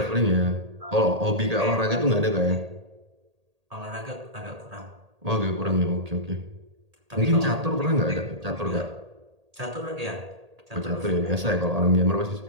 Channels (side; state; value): left; late; 1.8 ms